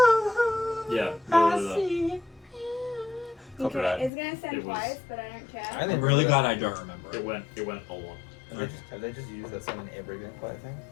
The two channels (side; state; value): right; drops out; at 4.1 s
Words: Yeah. Copyright. Okay, it's gonna send It was- twice, but I don't care. I I'm really glad I don't remember It it. went a lot. Have they just used that song in every vampire thing?